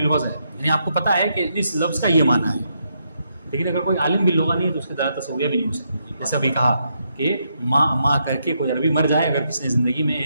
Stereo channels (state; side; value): inverted; both; correlation -0.79